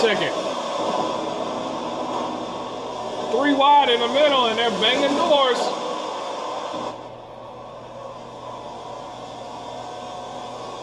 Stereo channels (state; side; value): identical; both; correlation 1.00